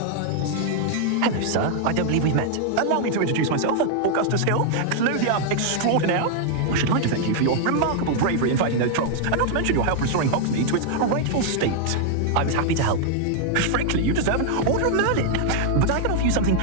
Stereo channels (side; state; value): both; different; correlation 0.00